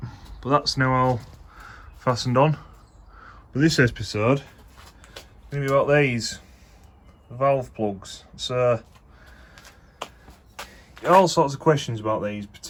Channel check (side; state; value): both; identical; correlation 1.00